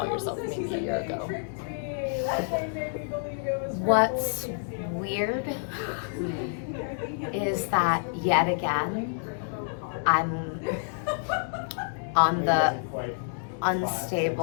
yourself maybe a year ago? What's weird is that yet again, I'm on the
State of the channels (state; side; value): silent; right; digital silence